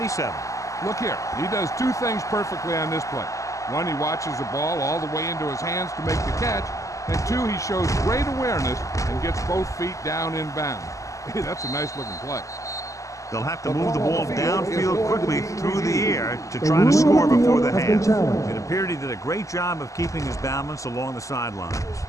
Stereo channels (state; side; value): late; right; 0.16 ms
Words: Look here, he does two things perfectly on this play. One, he watches the ball all the way into his hands to make the catch, and two, he shows great awareness and gets both feet down in bounds. Hey, that's a nice-looking play. They'll have to move the ball downfield quickly through the air to try to score before the half. It appeared he did a great job of keeping his balance along the sidelines.